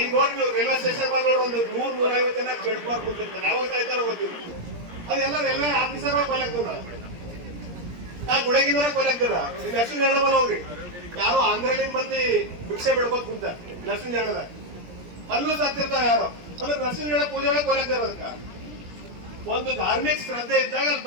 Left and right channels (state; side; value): late; left; 17 ms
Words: ನೋಡಿ ನೀವು ರೈಲ್ವೆ ಸ್ಟೇಷನ್ ಬಂದ್ ನೋಡಿ ಒಂದು 100-150 ಜನ ಬೆಳ್ಕೊಬಾರ್ ಬಂದಿರ್ತಾರೆ, ಯಾವಾಗ ಸಾಯ್ತಾರ ಗೊತ್ತಿಲ್ಲ. ಅದೆಲ್ಲ ರೈಲ್ವೆ ಆಫೀಸರ್ ಕೊಯ್ಲಾಗ್ತದ, ನಾ ಗುಡಗಿನವರ ಕೊಯ್ಲಾಗ್ತದ. ಲಕ್ಷ್ಮೀ ನಾರಾಯಣ ಹೋಗ್ರಿ, ಯಾರೋ ಆಂಧ್ರಲಿಂದ ಮಂದಿ ಭಿಕ್ಷೆ ಬೆಳ್ಕೋತ್ ಕುಂತ ಲಕ್ಷ್ಮೀ ನಾರಾಯಣದಾಗ ಅಲ್ಲೂ ಸತ್ತಿರ್ತಾವ ಯಾರೋ. ಅಂದ್ರೆ ನರಸಿಂಹ ನಾರಾಯಣ ಪೂಜೆ ಒಳಗೆ ಕೊಯ್ಲಾಗ್ತಾರ. ಅದಕ್ಕ ಒಂದು ಧಾರ್ಮಿಕ ಶ್ರದ್ಧೆ ಇದ್ದಾಗ ಅಲ್ಲಿ